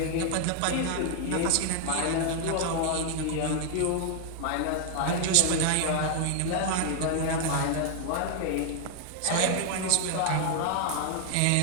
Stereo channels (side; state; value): both; different; correlation 0.00